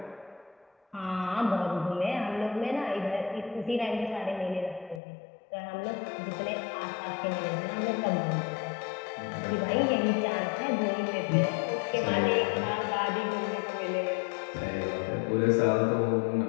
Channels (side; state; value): right; drops out; at 5.0 s